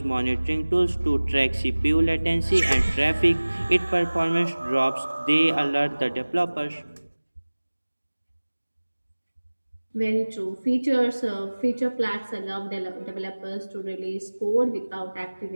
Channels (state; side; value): inverted; both; correlation -1.00